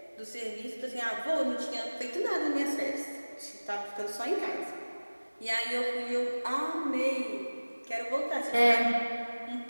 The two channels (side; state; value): both; inverted; correlation -1.00